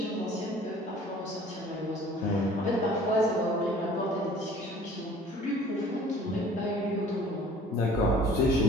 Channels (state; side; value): normal; both; correlation 0.50